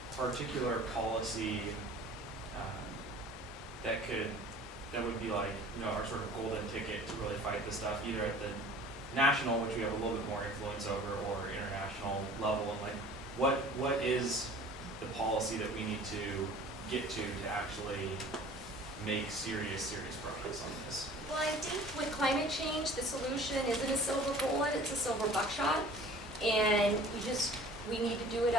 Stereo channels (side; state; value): both; normal; correlation 0.46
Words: particular policy that would be like, you know, our sort of golden ticket to really fight this stuff, either at the national, which we have a little bit more influence over, or international level, and like what is the policy that we need to get to actually make serious progress on this? Well, I think with climate change, the solution isn't a silver bullet, it's a silver buckshot. And we need to do it